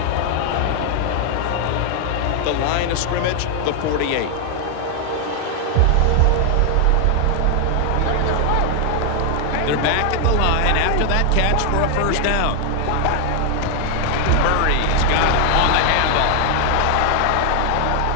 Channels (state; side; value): different; both; correlation 0.00